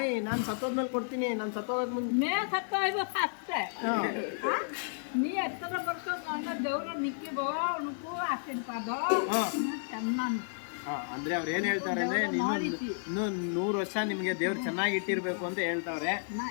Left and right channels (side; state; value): right; silent; digital silence